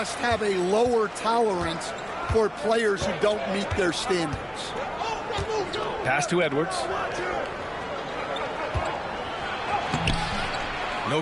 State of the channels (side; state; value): both; identical; correlation 1.00